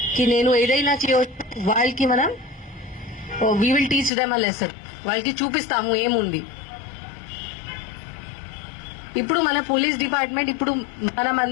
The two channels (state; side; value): drops out; right; at 4.1 s